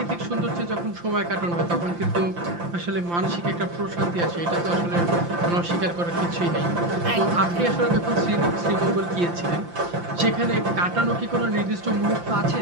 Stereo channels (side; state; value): left; late; 5.8 ms